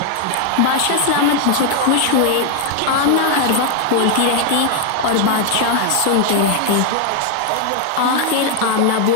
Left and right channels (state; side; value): different; both; correlation 0.00